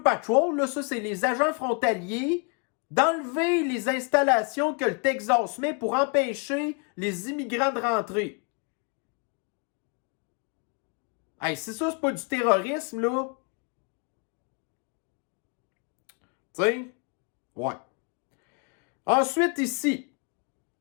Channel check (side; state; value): right; quieter; 36.6 dB